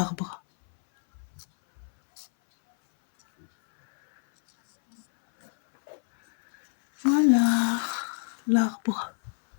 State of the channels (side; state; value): right; silent; 61 dB below the other